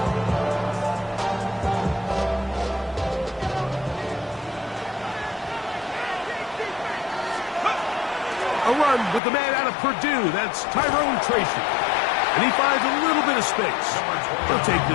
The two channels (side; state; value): right; drops out; at 9.2 s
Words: A run with the man out of Purdue. That's Tyrone Tracy. And he finds a little bit of space. He'll take